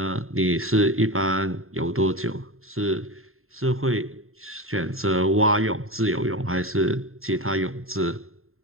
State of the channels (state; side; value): late; left; 0.61 ms